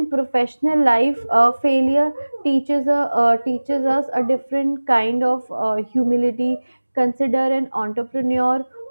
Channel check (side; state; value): both; inverted; correlation -1.00